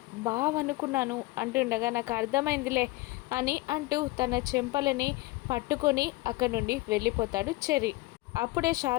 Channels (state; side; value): quieter; right; 20.3 dB